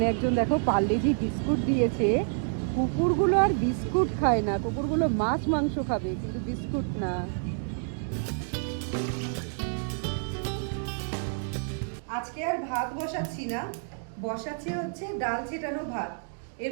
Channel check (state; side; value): silent; left; digital silence